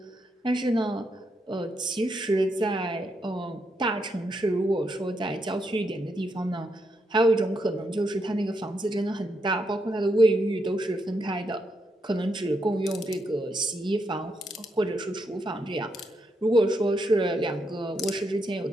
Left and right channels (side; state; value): both; normal; correlation 0.80